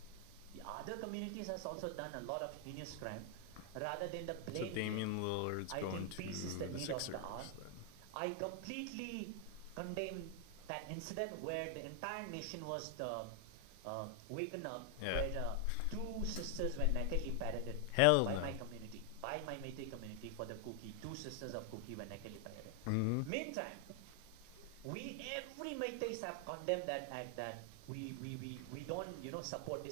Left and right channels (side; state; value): both; different; correlation 0.00